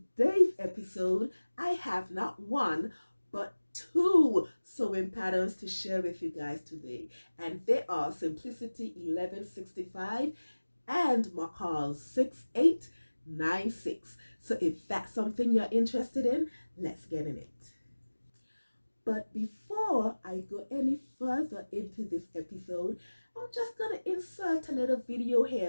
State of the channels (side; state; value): both; inverted; correlation -1.00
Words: episode, I have not one but two sewing patterns to share with you guys today, and they are Simplicity 1165 and McCall 6896. So if that's something you're interested in, let's get in it. But before I go any further into this episode, I'm just going to insert a little video